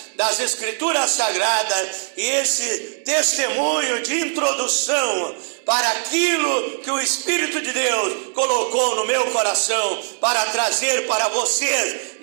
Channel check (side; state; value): left; silent; digital silence